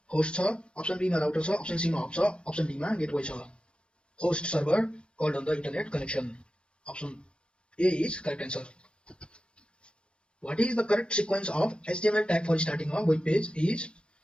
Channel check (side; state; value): right; late; 0.056 ms